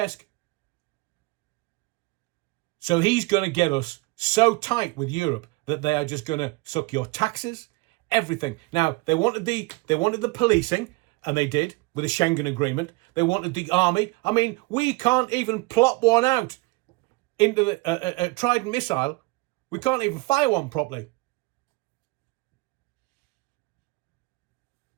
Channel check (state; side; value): quieter; left; 24.1 dB